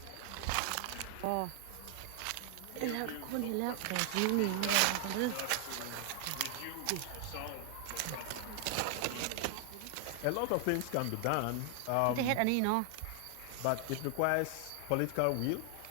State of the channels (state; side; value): different; both; correlation 0.00